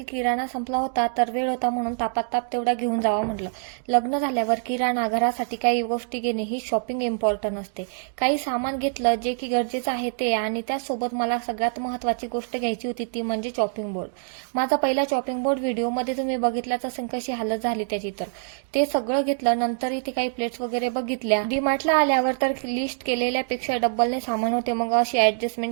किराणा संपला होता तर वेळ होता म्हणून तापात ताप तेवढा घेऊन जावा म्हटलं. लग्न झाल्यावर किराणा घरासाठी काही गोष्टी घेणे ही शॉपिंग इम्पॉर्टंट असते. काही सामान घेतलं जे की गरजेचं आहे ते, आणि त्यासोबत मला सगळ्यात महत्त्वाची गोष्ट घ्यायची होती ती म्हणजे चॉपिंग बोर्ड. माझा पहिला चॉपिंग बोर्ड व्हिडिओमध्ये तुम्ही बघितलाच असेल कशी हालत झाली त्याची. तर ते सगळं घेतलं. नंतर इथे काही प्लेट्स वगैरे बघितल्या. डीमार्टला आल्यावर तर लिस्ट केलेल्यापेक्षा डबलने सामान होते, मग अशी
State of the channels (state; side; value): silent; left; digital silence